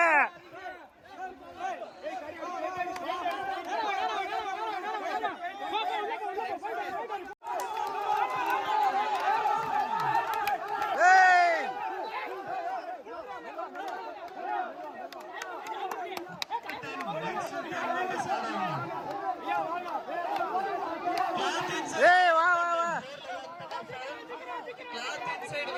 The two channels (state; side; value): identical; both; correlation 1.00